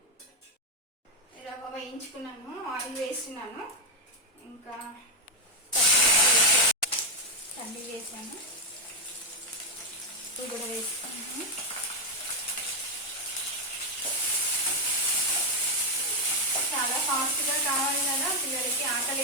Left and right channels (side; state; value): both; normal; correlation 0.03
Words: రవ్వ వేయించుకున్నాను, ఆయిల్ వేస్తున్నాను. ఇంకా పల్లి వేసాను, ఇది కూడా వేసుకున్నాను. చాలా ఫాస్ట్గా కావాలి కదా, పిల్లలకి ఆకలి